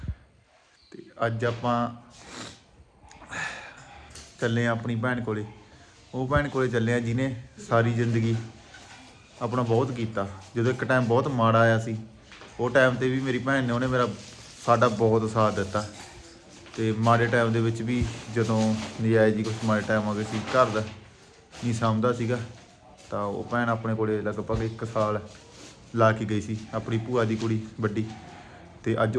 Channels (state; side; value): identical; both; correlation 1.00